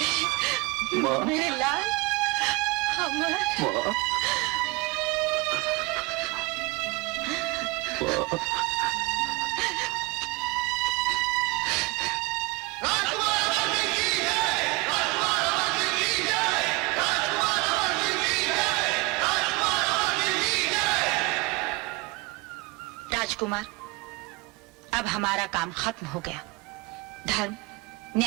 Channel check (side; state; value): left; quieter; 23.4 dB